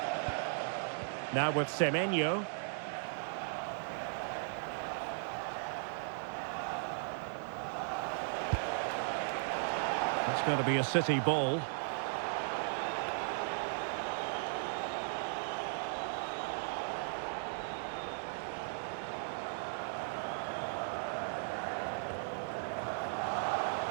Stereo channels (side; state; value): left; silent; digital silence